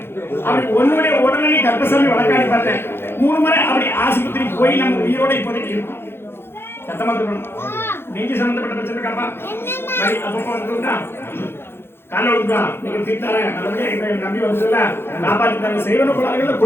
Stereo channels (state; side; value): late; right; 0.11 ms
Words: அப்படி ஒன்னுடைய உடல்நிலை கர்ப்பசாமி வழக்காடி பார்த்தேன் 3 முறை அப்படி ஆஸ்பத்திரி போய் நம்ம உயிரோட இப்போதைக்கு இருக்கும் சத்தமா சொல்லணும் நெஞ்சு சம்பந்தப்பட்ட பிரச்சனை காப்பா அப்பப்போ வந்துட்டா காலை விட்டுவா நீங்க தீர்த்தார நல்லபடியா எங்களை நம்பி வந்துல காப்பாற்றிட்டாங்க செய்வன கோளாறுகள்